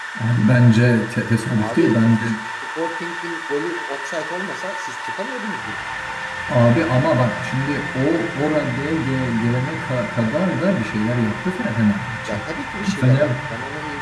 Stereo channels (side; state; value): both; identical; correlation 1.00